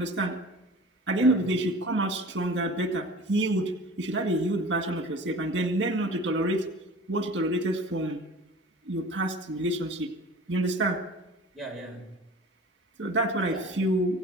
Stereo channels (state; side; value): normal; both; correlation 0.41